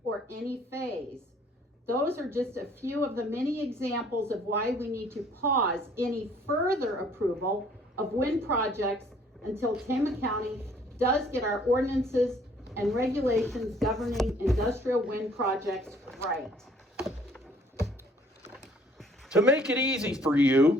or any phase. Those are just a few of the many examples of why we need to pause any further approval of wind projects until Tama County does get our ordinances and regulations governing industrial wind projects right. To make it easy for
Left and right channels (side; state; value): both; normal; correlation 0.59